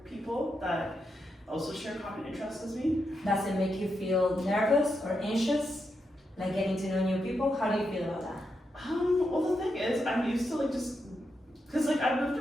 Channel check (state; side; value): normal; both; correlation 0.84